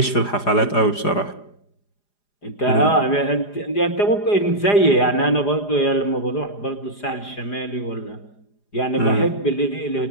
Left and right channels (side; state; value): right; late; 4.9 ms